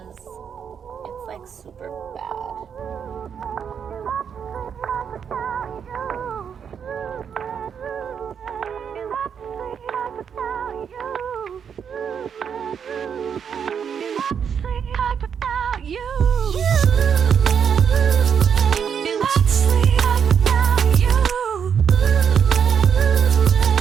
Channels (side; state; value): left; quieter; 7.4 dB